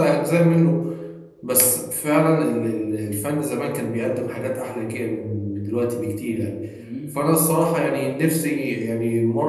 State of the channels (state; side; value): identical; both; correlation 1.00